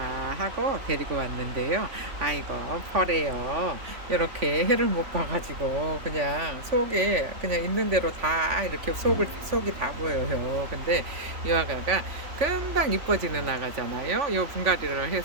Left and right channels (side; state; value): left; late; 3.5 ms